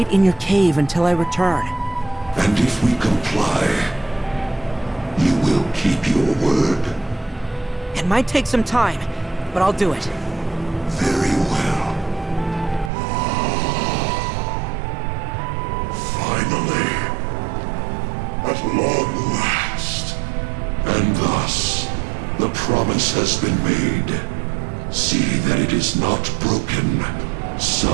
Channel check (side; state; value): left; drops out; at 12.9 s